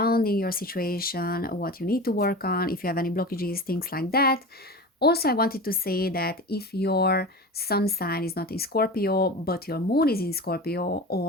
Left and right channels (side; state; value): both; normal; correlation 0.31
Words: your situation, what you need to work on, if you have any blockages, things like that. Also, I wanted to say that if your sun sign is not in Scorpio, but your moon is in Scorpio,